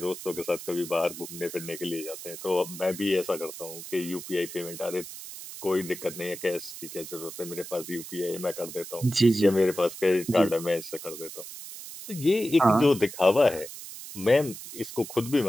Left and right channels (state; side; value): noise; right; hiss, 12 dB below the sound